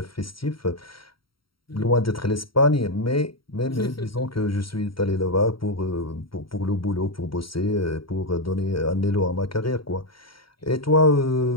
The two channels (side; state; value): right; late; 0.74 ms